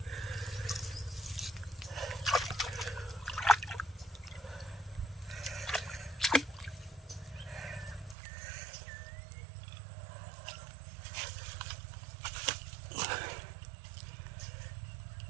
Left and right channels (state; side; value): drops out; left; at 8.2 s